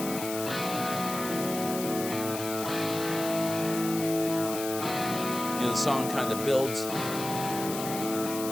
The song kind of builds, and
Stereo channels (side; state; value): left; noise; hiss, 8 dB below the sound